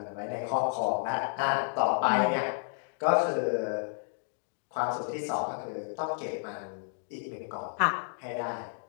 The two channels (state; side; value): silent; right; 57 dB below the other